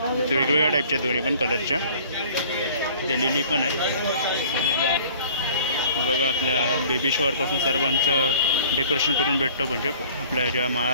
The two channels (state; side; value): inverted; both; correlation -0.51